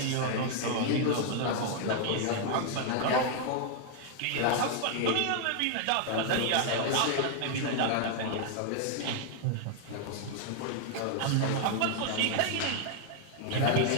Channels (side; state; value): both; different; correlation 0.00